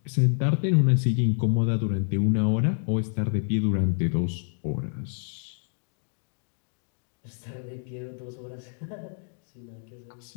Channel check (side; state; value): right; silent; 60 dB below the other